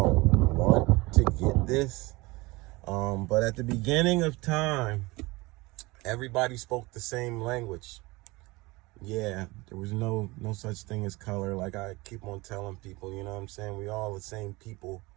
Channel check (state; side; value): quieter; left; 22.7 dB